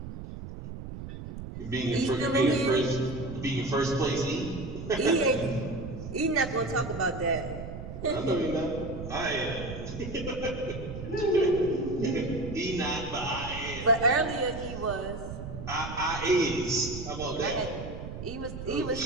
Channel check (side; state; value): right; noise; rumble, 9 dB below the sound